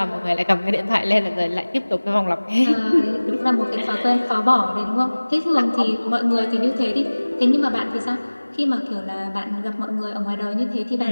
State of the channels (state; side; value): inverted; both; correlation -1.00